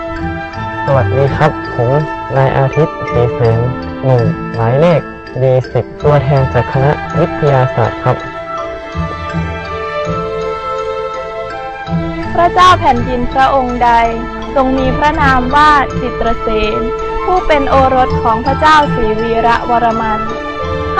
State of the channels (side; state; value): both; identical; correlation 1.00